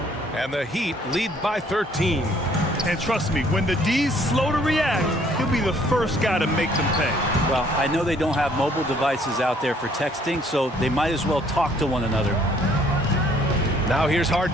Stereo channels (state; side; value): normal; both; correlation 0.62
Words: And the Heat lead by 13. And trust me, when the D's slow to react, he'll be the first guy to make them pay. Well, I know they don't have mobile devices out there for texting, so they might as well talk to one another. Now here's